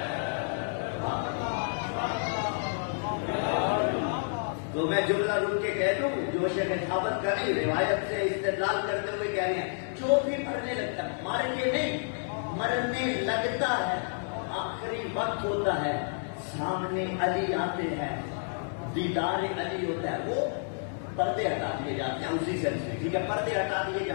تو میں جملہ رک کے کہہ دوں، جو شیخ ثابت کریں روایت سے استدلال کرتے ہوئے کہہ رہے ہیں، جو بھی مرنے لگتا ہے، مر کے نہیں، مرنے لگتا ہے، آخری وقت ہوتا ہے، سامنے علی آتے ہیں، دیدار علی ہوتا ہے، وہ پردے ہٹا دیے جاتے ہیں. اسی سینس میں ٹھیک ہے، پردے ہٹا دیے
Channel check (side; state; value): right; silent; 57 dB below the other